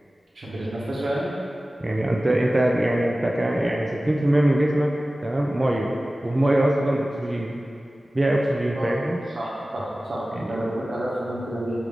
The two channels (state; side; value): normal; both; correlation 0.96